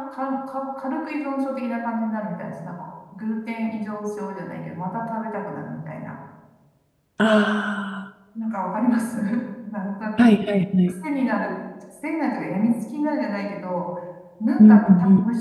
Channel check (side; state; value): both; identical; correlation 1.00